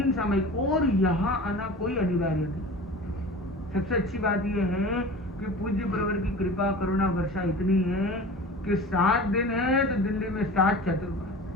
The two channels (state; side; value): normal; both; correlation 0.37